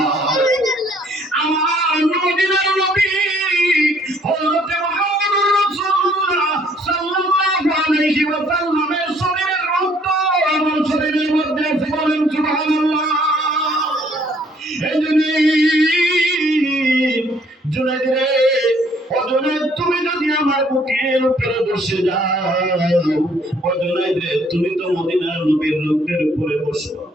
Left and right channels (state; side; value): normal; both; correlation 0.63